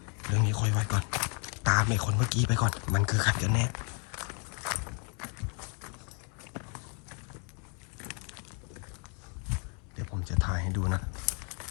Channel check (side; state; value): right; quieter; 37.6 dB